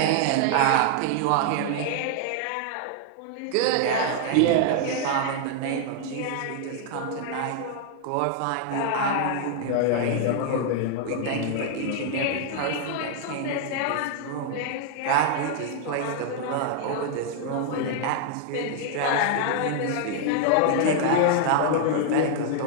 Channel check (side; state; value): both; different; correlation 0.00